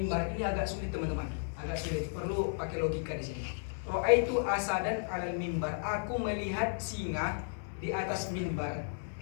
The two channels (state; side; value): silent; right; digital silence